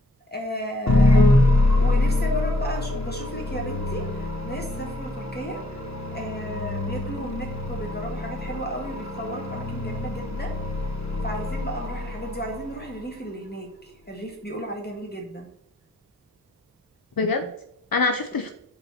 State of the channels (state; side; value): normal; both; correlation 0.66